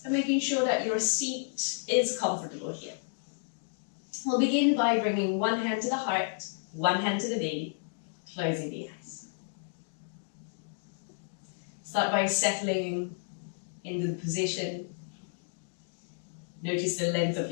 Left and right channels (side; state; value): right; silent; digital silence